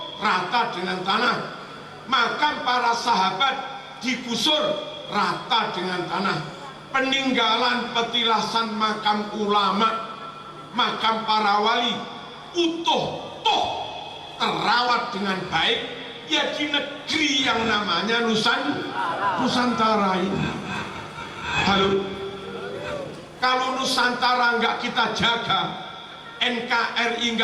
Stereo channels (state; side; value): identical; both; correlation 1.00